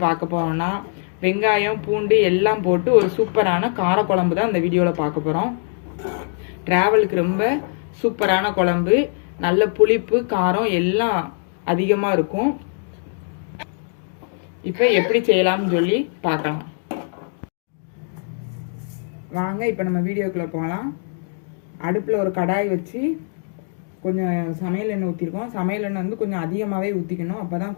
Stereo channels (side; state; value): right; silent; 64 dB below the other